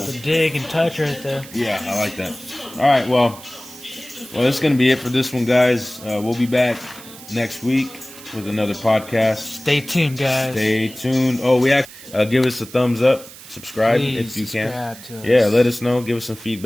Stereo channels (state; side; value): noise; right; hiss, 17 dB below the sound